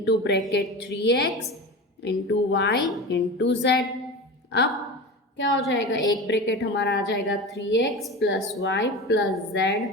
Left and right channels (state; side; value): normal; both; correlation 0.29